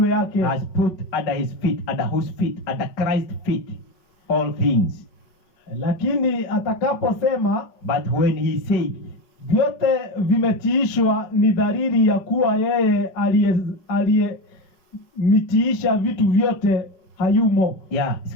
yake. Has put under his feet, under whose feet? Under Christ's feet all things. Lakini atakaposema, but when he said, vyote vimetiishwa, ni dalili ya kuwa yeye aliyemitiisha vitu vyote hayumo.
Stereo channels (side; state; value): right; late; 4.9 ms